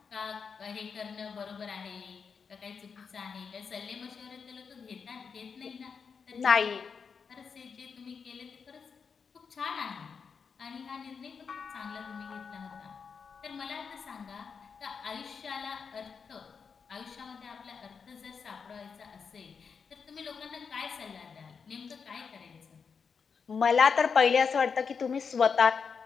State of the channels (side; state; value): right; quieter; 5.8 dB